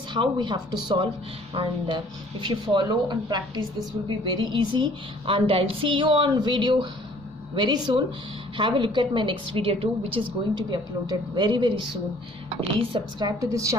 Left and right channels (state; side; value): normal; both; correlation 0.55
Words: how we have to solve, and if you follow and practice, this will be very easy. And I'll see you on video very soon. Have a look at my next video too, which is going to be uploaded very soon. Please subscribe to this